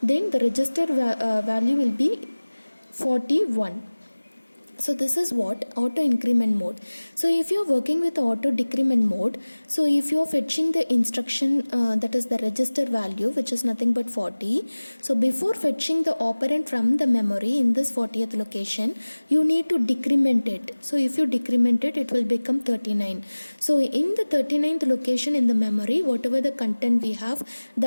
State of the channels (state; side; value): inverted; both; correlation -1.00